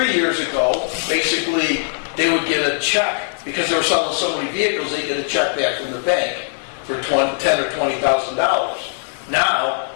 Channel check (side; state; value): right; silent; 66 dB below the other